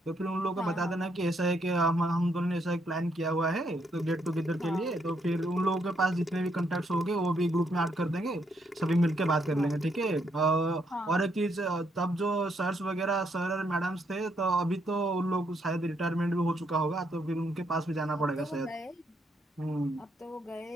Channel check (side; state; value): both; normal; correlation 0.74